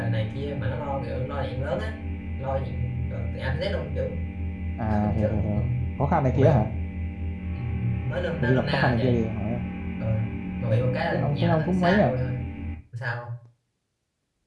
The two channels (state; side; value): identical; both; correlation 1.00